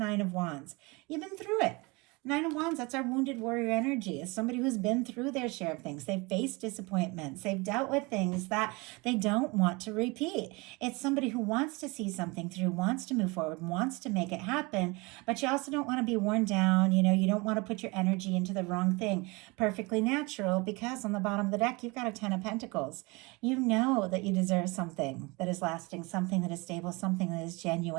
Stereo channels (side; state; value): left; quieter; 26.1 dB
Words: of Wands. You've been through it. Nine of Wands, that's our wounded warrior energy. It's somebody who's been through their share of things. They've faced disappointments. They've dealt with things that they don't want to repeat. It's somebody who wants to see something through, wants to move forward, wants to make it happen, but you also don't want to be worn down. You don't want to put your energy into the wrong thing. Perfectly natural, because on the bottom of the deck, you've got a 10 of Pentacles. You know that you deserve something that is lasting, something that is stable, something that is